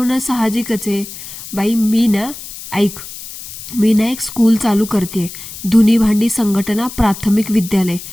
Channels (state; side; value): noise; left; hiss, 12 dB below the sound